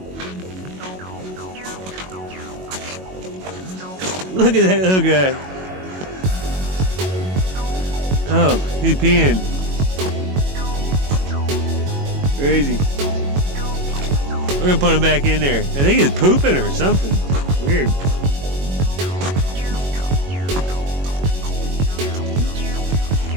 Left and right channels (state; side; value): late; left; 21 ms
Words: Look at that little guy. Oh, he's peeing. Crazy. We're gonna put him back in there. I think he's pooping or something. Weird.